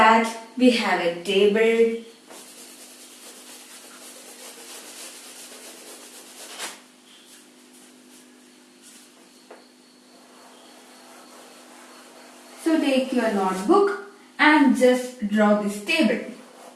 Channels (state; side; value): identical; both; correlation 1.00